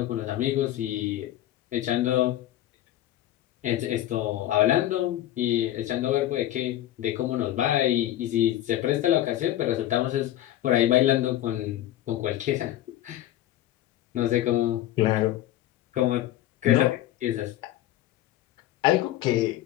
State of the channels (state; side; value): quieter; right; 13.5 dB